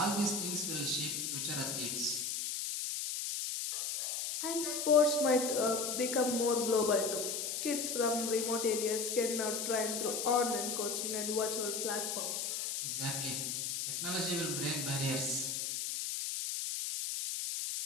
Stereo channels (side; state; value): left; noise; hiss, 2 dB below the sound